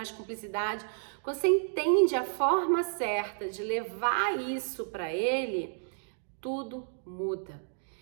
cumplicidade. Quando você entende a forma certa de levar isso para ele, tudo muda.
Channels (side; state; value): left; silent; digital silence